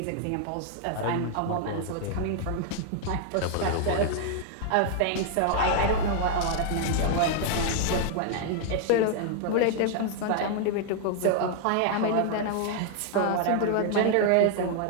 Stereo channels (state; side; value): different; both; correlation 0.00